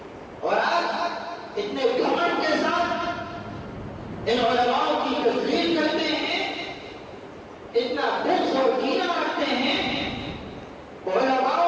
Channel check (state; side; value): identical; both; correlation 1.00